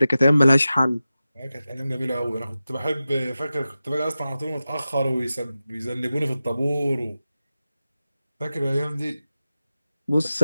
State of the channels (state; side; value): inverted; both; correlation -0.94